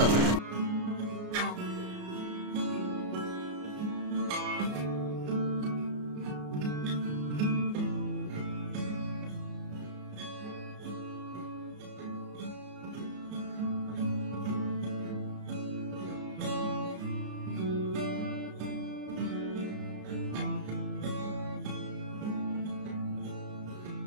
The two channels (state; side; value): late; left; 33 ms